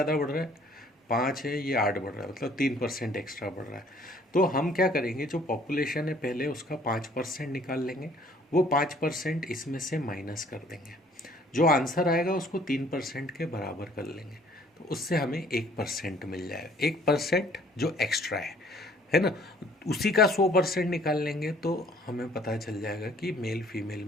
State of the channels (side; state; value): both; normal; correlation 0.58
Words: बढ़ रहा है? 5 है, ये 8 बढ़ रहा है, मतलब 3% एक्स्ट्रा बढ़ रहा है। तो हम क्या करेंगे, जो पॉपुलेशन है पहले उसका 5% निकाल लेंगे, वो 5% इसमें से माइनस कर देंगे, जो आंसर आएगा उसको 3% के बराबर कर लेंगे, तो उससे हमें 1% मिल जाएगा। 1% जो एक्स्ट्रा है ना, उसी का 100% निकाल लेंगे तो हमें पता चल जाएगा कि मेल फीमेल